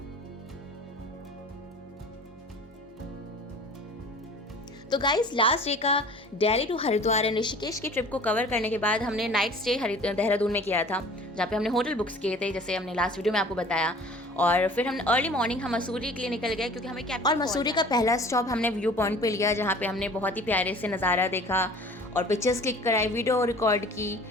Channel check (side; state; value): both; normal; correlation 0.46